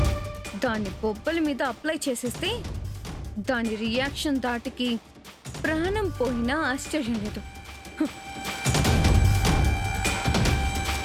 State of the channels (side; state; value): both; identical; correlation 1.00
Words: దాని బొబ్బల మీద అప్లై చేసేస్తే దాని రియాక్షన్ దాటికి ప్రాణం పోయినా ఆశ్చర్యం లేదు.